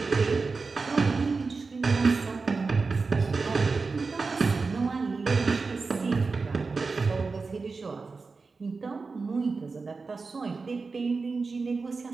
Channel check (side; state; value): left; quieter; 4.3 dB